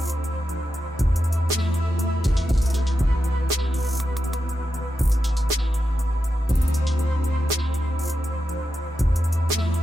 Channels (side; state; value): both; normal; correlation 0.88